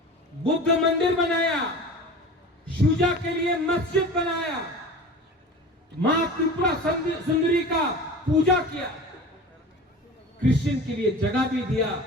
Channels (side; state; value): both; normal; correlation 0.36